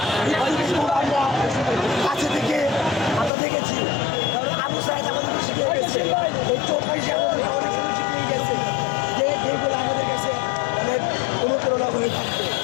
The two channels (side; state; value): right; drops out; at 3.3 s